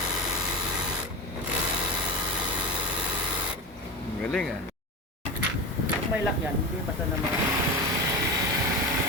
Galing ah. May lock yan, hindi basta naman.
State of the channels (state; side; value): normal; both; correlation 0.23